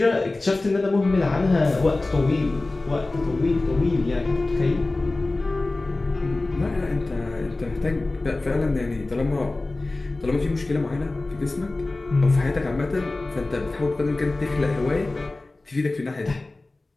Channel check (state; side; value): quieter; right; 3.1 dB